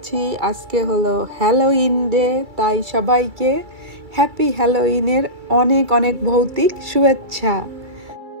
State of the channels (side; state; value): left; late; 2.3 ms